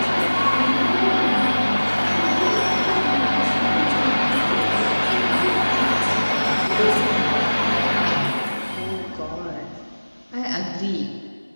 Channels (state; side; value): inverted; both; correlation -1.00